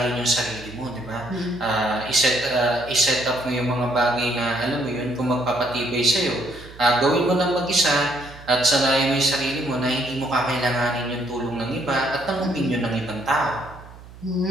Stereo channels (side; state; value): right; noise; hum, 18 dB below the sound